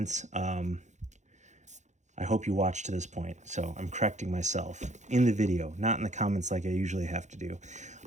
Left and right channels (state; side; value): late; left; 0.34 ms